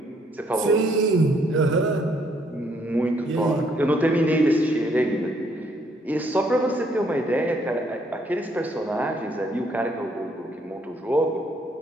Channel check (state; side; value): normal; both; correlation 0.68